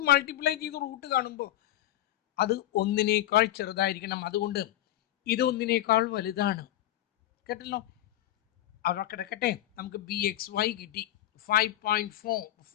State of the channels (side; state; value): right; quieter; 13.8 dB